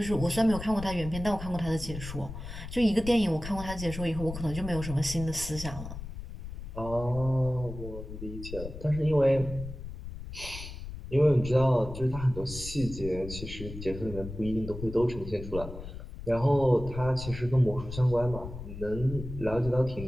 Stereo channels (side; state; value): left; noise; rumble, 10 dB below the sound